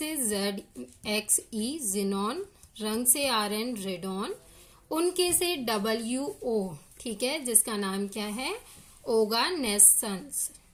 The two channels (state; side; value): identical; both; correlation 1.00